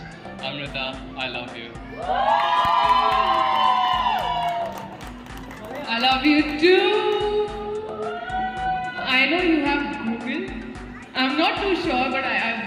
Amrita, I love you. I love you too. I know you have Google. I'm not too sure, but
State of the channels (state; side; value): identical; both; correlation 1.00